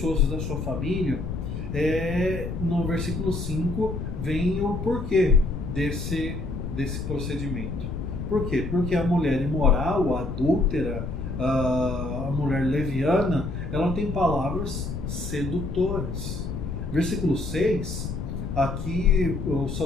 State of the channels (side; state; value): left; noise; rumble, 5 dB below the sound